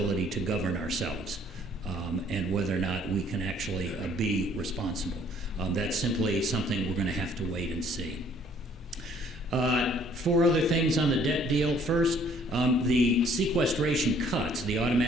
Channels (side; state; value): both; normal; correlation 0.60